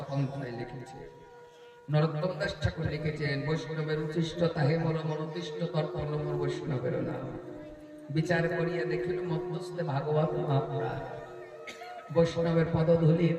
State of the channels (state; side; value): identical; both; correlation 1.00